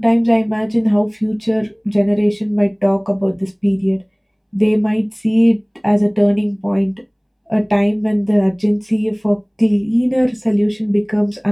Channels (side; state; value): both; identical; correlation 1.00